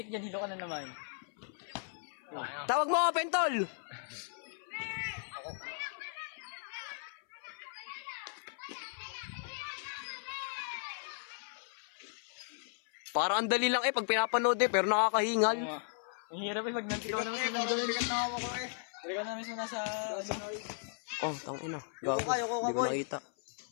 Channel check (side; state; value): right; silent; 54 dB below the other